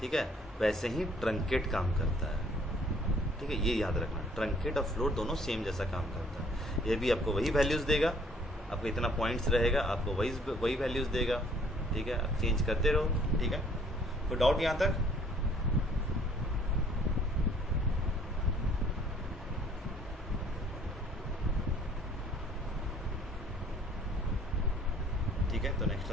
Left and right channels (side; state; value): both; normal; correlation 0.59